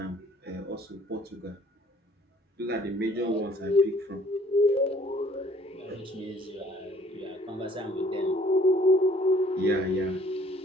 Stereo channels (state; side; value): normal; both; correlation 0.58